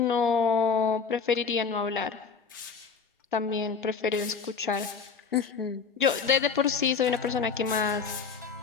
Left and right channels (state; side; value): quieter; right; 5.7 dB